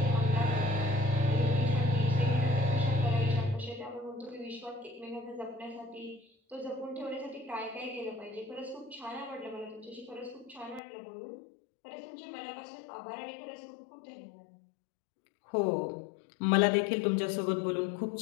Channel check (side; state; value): right; drops out; at 10.8 s